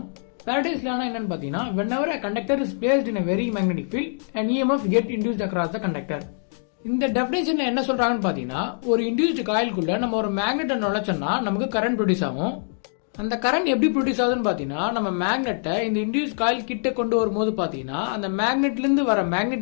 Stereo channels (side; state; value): right; silent; digital silence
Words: ஃபேரடேஸ் லானா என்னன்னு பார்த்தீங்கன்னா, whenever a conductor is placed in a very magnetic field, an EMF get induced across the conductor. இந்த டெஃபினேஷன்ல என்ன சொல்றாங்கன்னு பாத்தீங்கன்னா, ஒரு இன்டியூஸ்டு காயிலுக்குள்ள நம்ம ஒரு மேக்னெட்டை நுழைச்சோம்னா நமக்கு கரண்ட் ப்ரொடியூஸ் ஆகும். அந்த கரண்ட் எப்படி ப்ரொடியூஸ் ஆகுதுன்னு பாத்தீங்கன்னா, நம்ம மேக்னெட்டை இந்த இன்டியூஸ் காயில் கிட்ட கொண்டு வரும்போது பாத்தீங்கன்னா, அந்த மேக்னெட்ல இருந்து வர